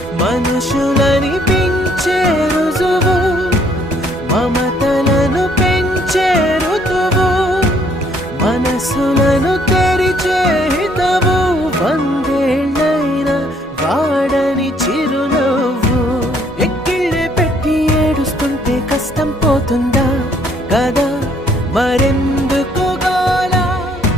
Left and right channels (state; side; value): normal; both; correlation 0.65